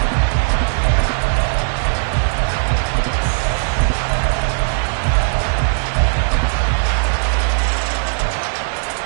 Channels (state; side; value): silent; left; digital silence